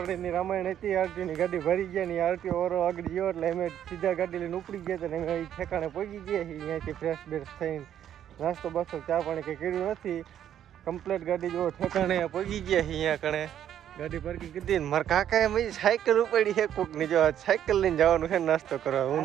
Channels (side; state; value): left; quieter; 10.3 dB